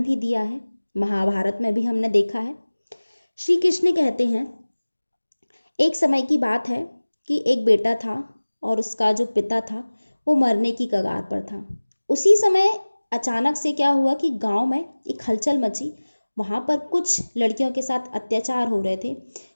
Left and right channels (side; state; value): both; inverted; correlation -1.00